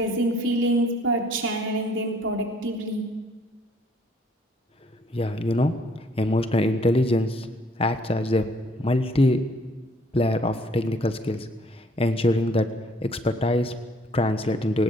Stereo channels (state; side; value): normal; both; correlation 0.61